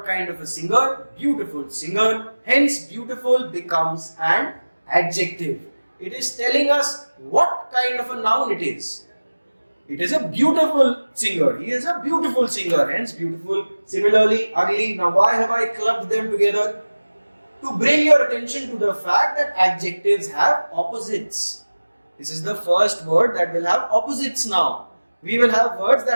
kind of a singer, beautiful singer. Hence beautiful becomes an adjective. It is telling us what kind of a noun it is. It is a beautiful singer. He is a beautiful singer. Hence beautiful. Similarly, ugly. Now why have I clubbed them together? To bring your attention to the fact that adjectives have opposites. This is the first word that will have opposites now. We will have words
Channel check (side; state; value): both; inverted; correlation -1.00